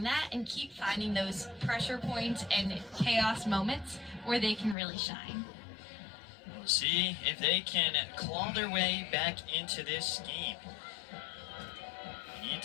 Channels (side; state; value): right; drops out; at 4.8 s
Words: that and keep finding those pressure points and chaos moments where they can really shine. We'll see if they can claw their way back into this game. You need